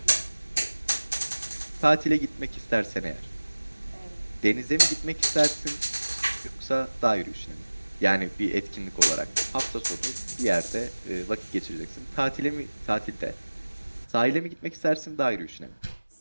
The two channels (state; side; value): inverted; both; correlation -1.00